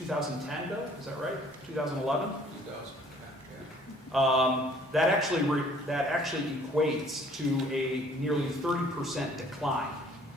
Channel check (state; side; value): normal; both; correlation 0.57